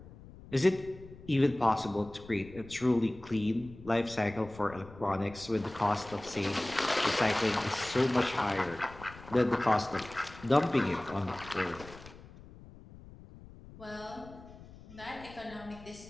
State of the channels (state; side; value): noise; left; rumble, 18 dB below the sound